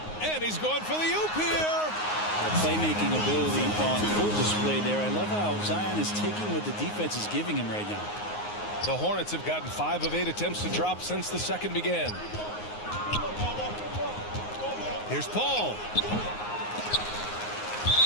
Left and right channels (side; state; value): right; late; 9.6 ms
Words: And he's going for the oop here. Playmaking ability on full display there. I love how Zion is taking what the defense is giving him right now. The Hornets have gotten 5 of 8 attempts to drop since the second began. Here's Paul.